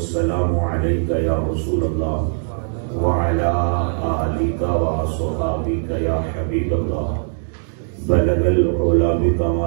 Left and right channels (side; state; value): left; silent; digital silence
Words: عليك يا رسول الله وعلى آلك وصحابك يا حبيب الله بلغ العلا